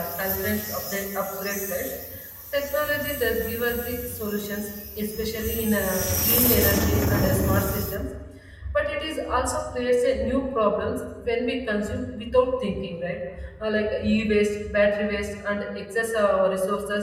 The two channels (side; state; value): both; identical; correlation 1.00